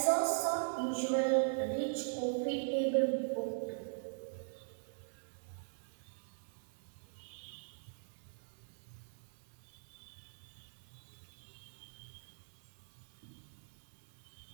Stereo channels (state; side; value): silent; left; digital silence